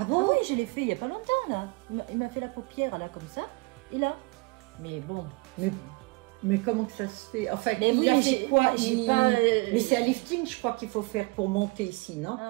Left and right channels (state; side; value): quieter; left; 26.6 dB